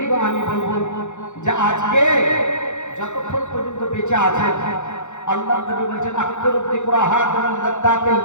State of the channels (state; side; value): late; right; 0.84 ms